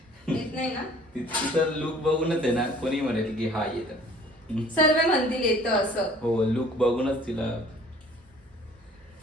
येत नाही ना. तिचं लुक बघूनच आहे ना कोणी म्हणेल की हा येत. सर्व म्हणतील येतं असं. हो, लुक बघूनच तिला.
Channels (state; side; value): normal; both; correlation 0.53